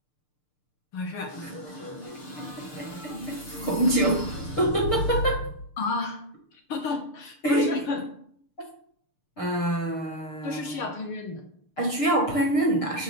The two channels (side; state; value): right; late; 6.7 ms